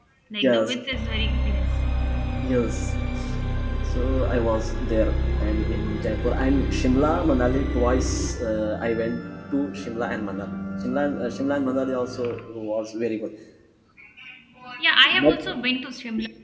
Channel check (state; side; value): identical; both; correlation 1.00